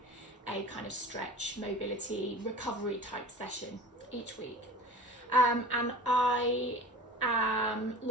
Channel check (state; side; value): normal; both; correlation 0.38